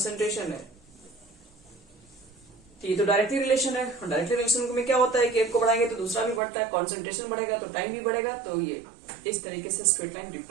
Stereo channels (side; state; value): left; drops out; at 6.4 s